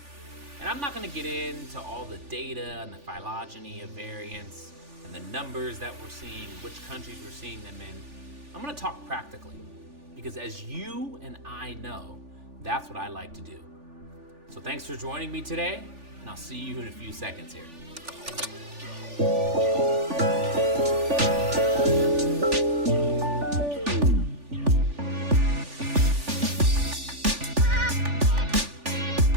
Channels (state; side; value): late; left; 3.4 ms